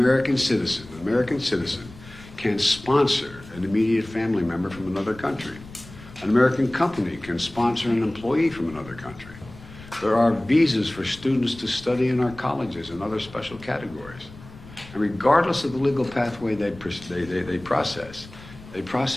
citizen can sponsor an immediate family member from another country. An American company can sponsor an employee from another country. There are visas for students to study in our colleges and other special categories. And regardless of the legal pathway they process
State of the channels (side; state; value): left; noise; rumble, 18 dB below the sound